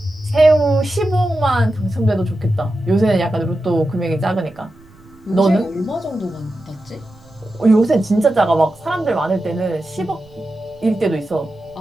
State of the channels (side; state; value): right; noise; rumble, 26 dB below the sound